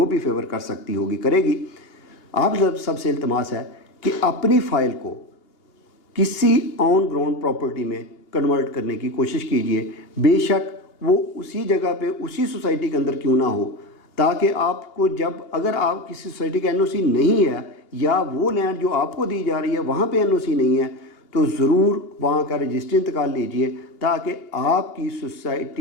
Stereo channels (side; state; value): right; late; 2.8 ms